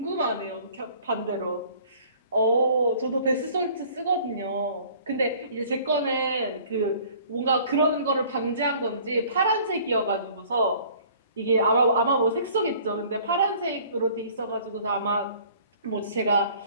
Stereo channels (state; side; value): inverted; both; correlation -0.52